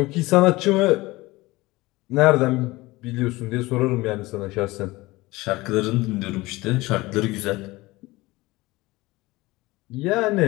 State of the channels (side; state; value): right; quieter; 20.7 dB